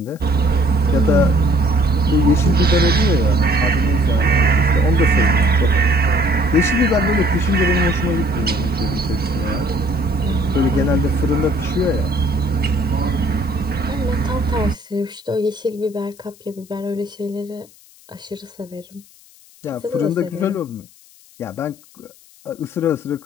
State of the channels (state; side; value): noise; left; hiss, 26 dB below the sound